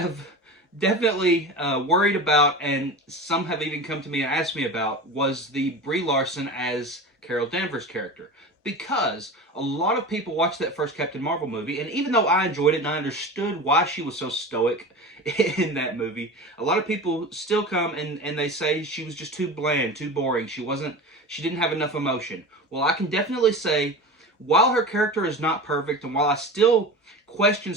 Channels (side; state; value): both; normal; correlation 0.30